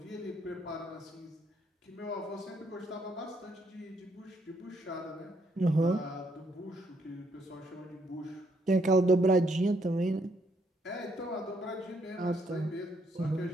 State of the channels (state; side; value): normal; both; correlation 0.72